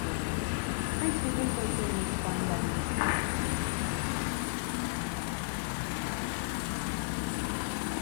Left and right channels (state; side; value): silent; right; 56 dB below the other